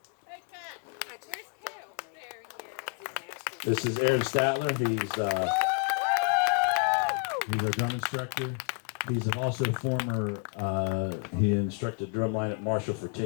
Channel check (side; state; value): right; quieter; 37.2 dB